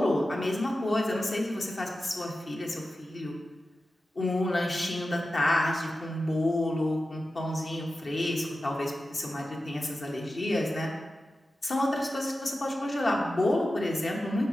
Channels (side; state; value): both; normal; correlation 0.93